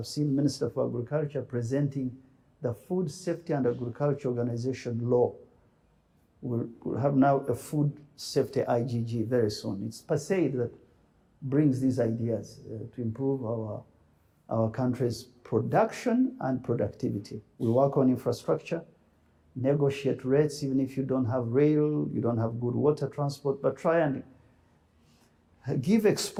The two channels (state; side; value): identical; both; correlation 1.00